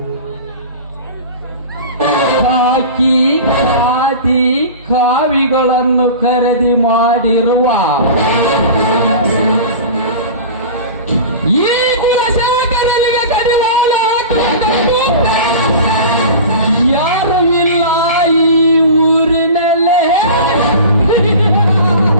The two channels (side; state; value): both; inverted; correlation -0.35